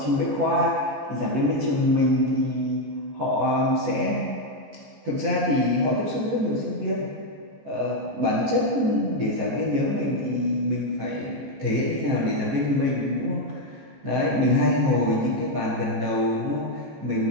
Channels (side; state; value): left; late; 14 ms